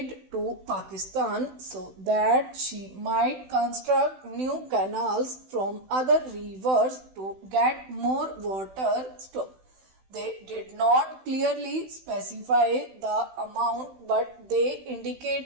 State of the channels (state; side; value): late; left; 16 ms